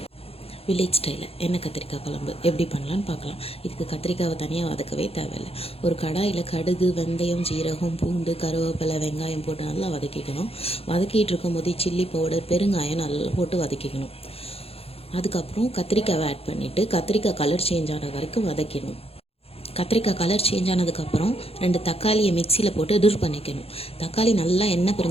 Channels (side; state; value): right; late; 0.29 ms